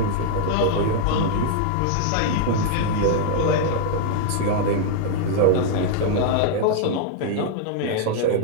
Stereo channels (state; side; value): different; both; correlation -0.01